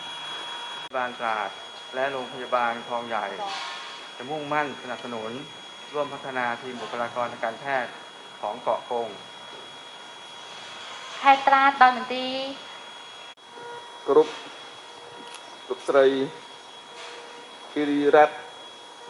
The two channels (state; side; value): identical; both; correlation 1.00